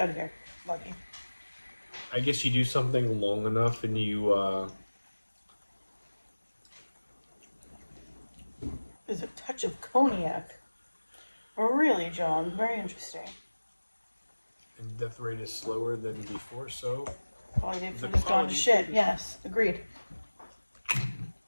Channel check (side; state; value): both; inverted; correlation -1.00